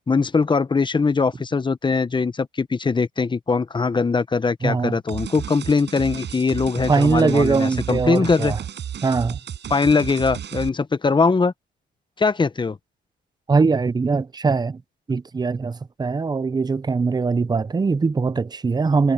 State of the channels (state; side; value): normal; both; correlation 0.75